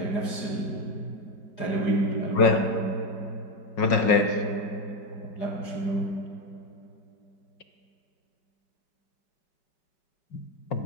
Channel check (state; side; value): late; right; 5.5 ms